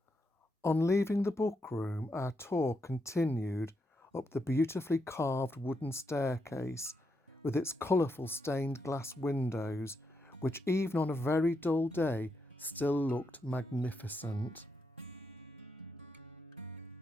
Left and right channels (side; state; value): both; normal; correlation 0.82